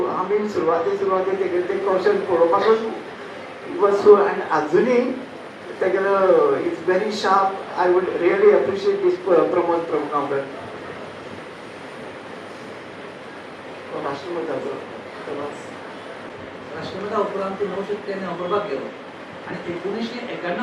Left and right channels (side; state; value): both; identical; correlation 1.00